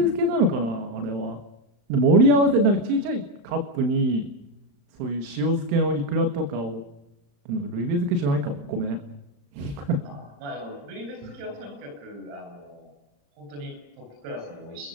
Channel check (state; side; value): late; left; 35 ms